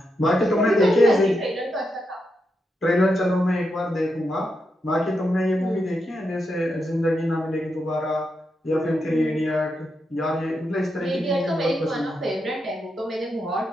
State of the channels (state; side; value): normal; both; correlation 0.84